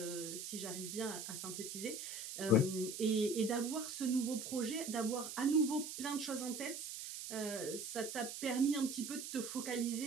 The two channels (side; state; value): right; noise; hiss, 7 dB below the sound